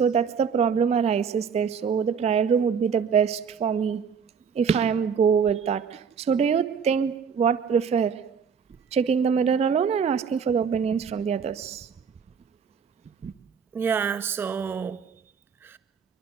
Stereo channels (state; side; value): quieter; left; 6.5 dB